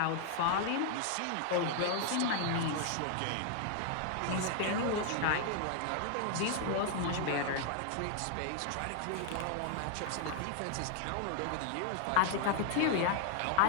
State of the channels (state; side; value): different; both; correlation 0.00